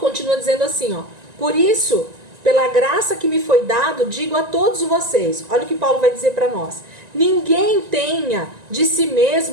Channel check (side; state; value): left; late; 1.9 ms